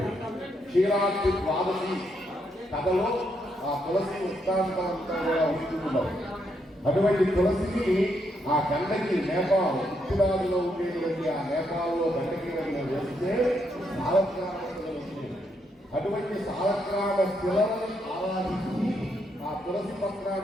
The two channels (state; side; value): normal; both; correlation 0.77